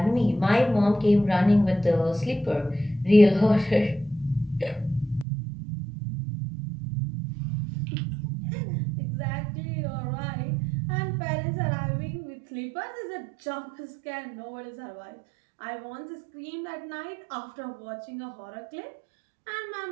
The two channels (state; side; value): drops out; left; at 5.2 s